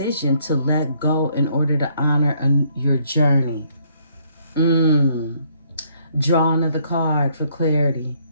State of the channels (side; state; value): both; inverted; correlation -0.67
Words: to let go in order to honor your journey. Draw another card for clarity